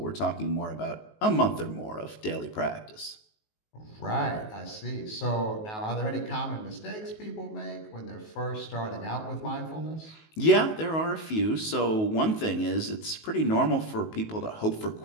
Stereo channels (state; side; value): late; right; 19 ms